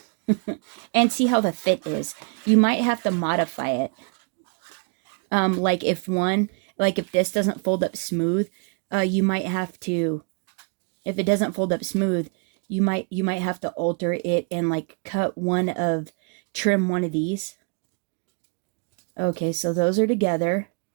And see how the fit is. You might have to modify it. Like if this doesn't fold up smooth, you might have to, if it doesn't fold up smooth, you might have to alter it and like trim one of these. Okay, so those are together.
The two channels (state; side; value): quieter; left; 38.5 dB